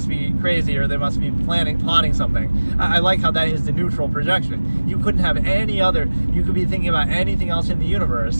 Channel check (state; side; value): inverted; both; correlation -1.00